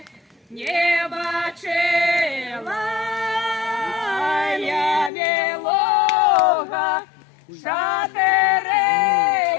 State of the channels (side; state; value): right; drops out; at 5.1 s